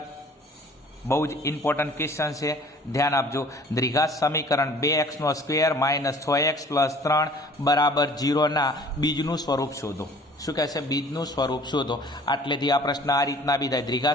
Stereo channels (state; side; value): normal; both; correlation 0.50